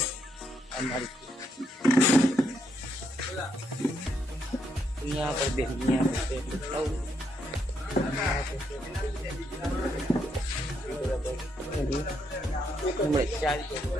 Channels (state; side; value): normal; both; correlation 0.77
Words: અમારી यहाँ पर भी यहाँ पे